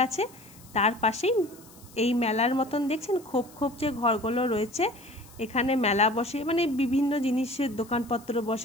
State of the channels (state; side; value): noise; left; hiss, 23 dB below the sound